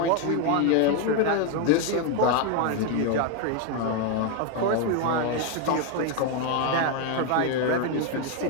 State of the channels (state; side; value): different; both; correlation 0.01